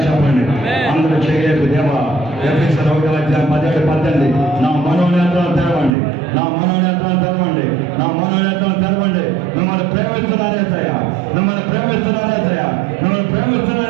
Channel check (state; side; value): drops out; left; at 5.9 s